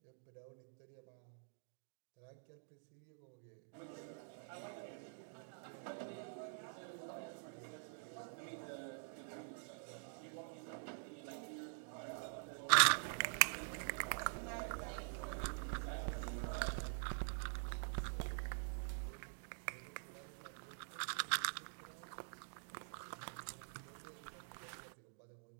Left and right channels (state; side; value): silent; left; digital silence